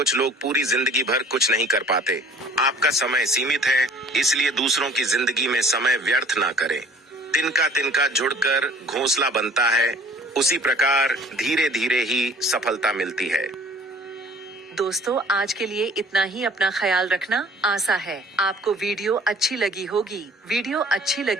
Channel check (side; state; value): both; normal; correlation 0.51